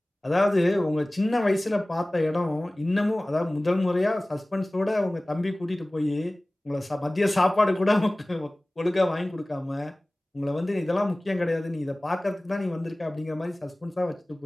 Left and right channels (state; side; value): normal; both; correlation 0.98